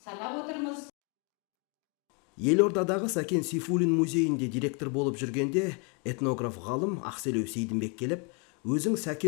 санап отырмыз. Елордадағы Сәкен Сейфуллин музейінде директор болып жүргенде этнограф ғалым Ақселеу Сейдімбек келіп, өзің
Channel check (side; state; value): right; quieter; 35.5 dB